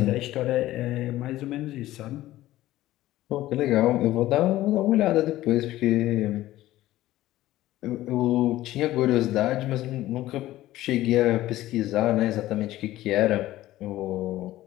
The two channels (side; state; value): right; quieter; 15.5 dB